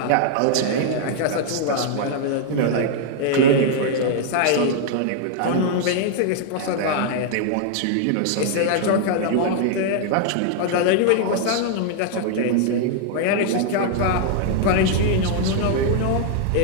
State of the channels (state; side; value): different; both; correlation 0.00